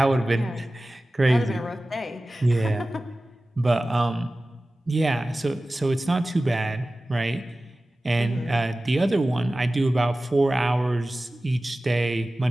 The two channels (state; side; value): normal; both; correlation 0.96